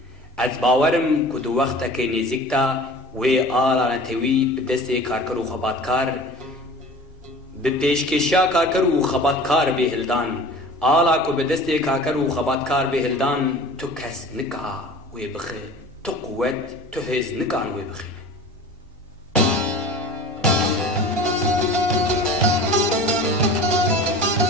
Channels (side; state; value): both; normal; correlation 0.40